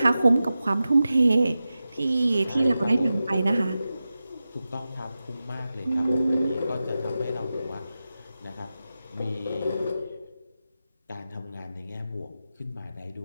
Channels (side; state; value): both; inverted; correlation -0.93